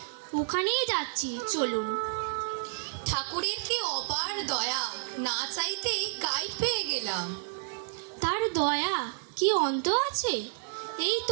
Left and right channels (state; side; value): silent; left; digital silence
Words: ওখানেই যাচ্ছি, চলুন। ঠাকুরের কি অপার দয়া, না চাইতেই গাইড পেয়ে গেলাম। তার দয়া কি অন্ত আছে? এই